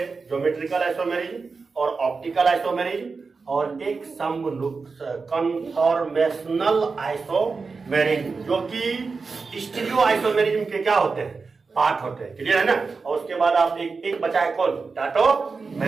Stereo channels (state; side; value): quieter; left; 4.5 dB